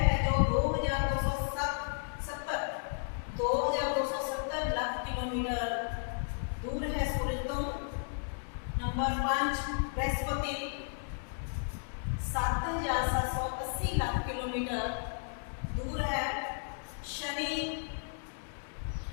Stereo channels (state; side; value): silent; right; digital silence